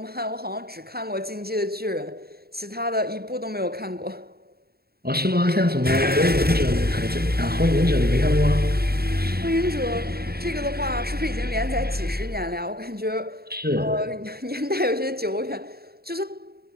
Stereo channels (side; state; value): left; late; 0.45 ms